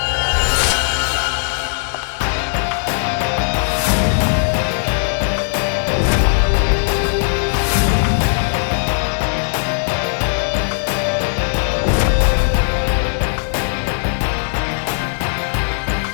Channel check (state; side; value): silent; right; digital silence